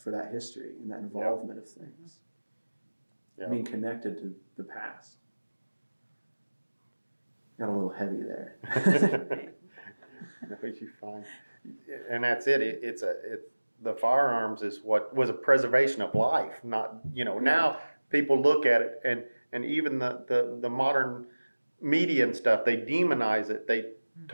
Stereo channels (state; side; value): inverted; both; correlation -1.00